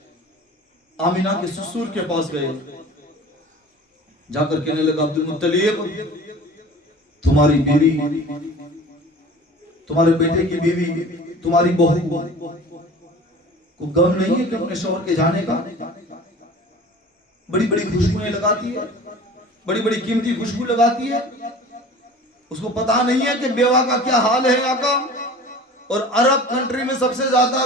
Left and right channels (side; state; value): both; normal; correlation 0.41